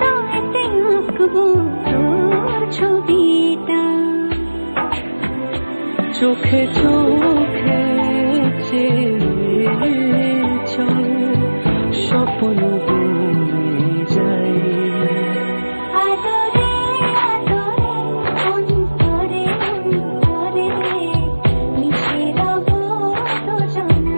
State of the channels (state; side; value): inverted; both; correlation -1.00